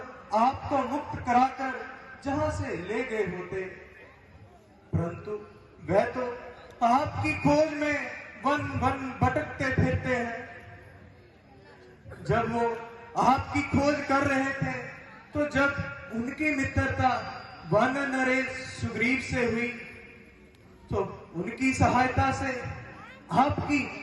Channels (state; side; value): identical; both; correlation 1.00